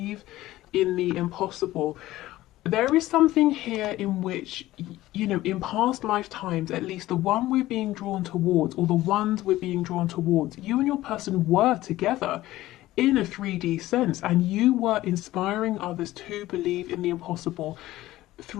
in the impossible. There is something here in which, you know, in past lifetimes, at least the one we're being drawn towards, or the ones we're being drawn towards, you and your person were together in a 3D sense, and you were inspiring others to believe in the impossible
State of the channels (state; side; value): quieter; right; 16.1 dB